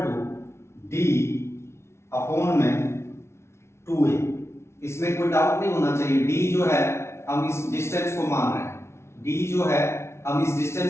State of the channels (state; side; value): late; right; 0.13 ms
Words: d upon में 2a। इसमें कोई डाउट नहीं होना चाहिए, d जो है हम इस डिस्टेंस को मान रहे हैं, d जो है हम इस